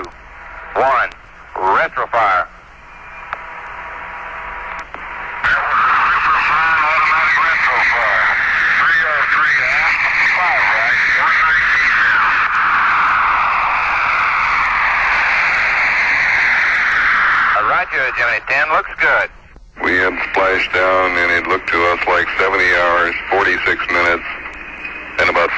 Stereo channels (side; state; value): both; identical; correlation 1.00